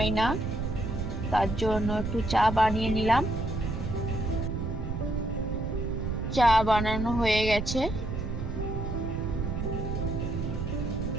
না, তার জন্য একটু চা বানিয়ে নিলাম। চা বানানো হয়ে গেছে।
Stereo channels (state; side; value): noise; right; rumble, 3 dB below the sound